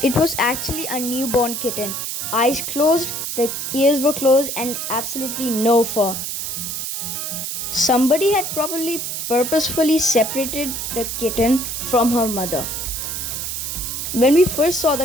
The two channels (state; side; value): noise; right; hiss, 4 dB below the sound